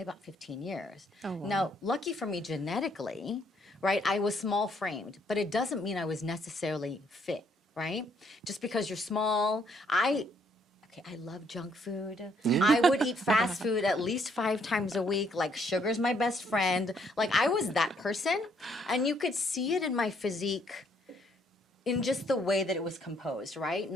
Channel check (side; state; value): both; normal; correlation 0.69